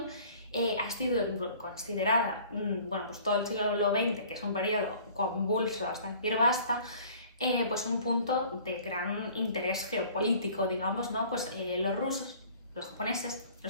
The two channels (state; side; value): inverted; both; correlation -0.50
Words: ha sido considerada, bueno, pues todo el siglo XX, que es un periodo convulso hasta decir basta, pues un punto de gran interés geopolítico, digamos, ¿no? Pues los rusos, los japoneses,